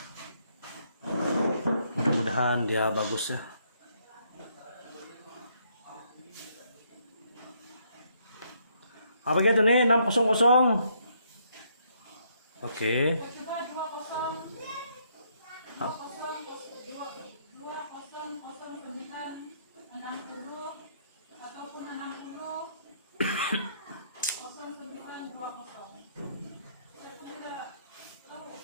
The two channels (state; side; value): inverted; both; correlation -0.71